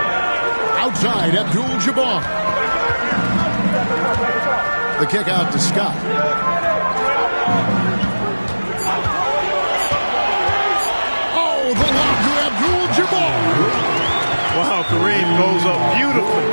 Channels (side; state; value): both; inverted; correlation -1.00